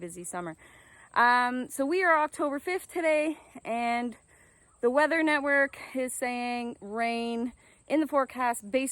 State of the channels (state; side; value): identical; both; correlation 1.00